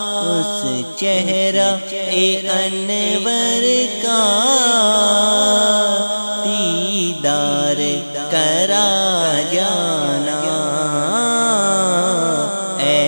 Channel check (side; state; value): both; inverted; correlation -1.00